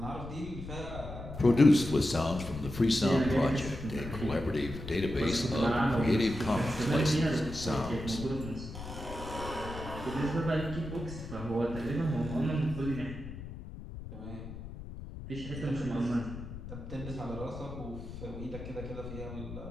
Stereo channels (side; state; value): left; noise; rumble, 10 dB below the sound